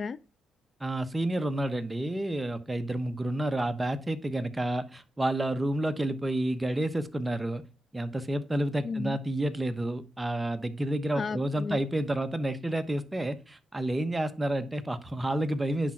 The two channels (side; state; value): both; normal; correlation 0.92